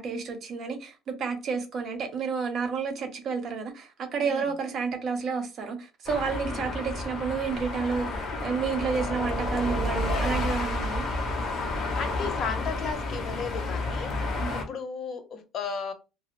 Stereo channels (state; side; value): normal; both; correlation 0.66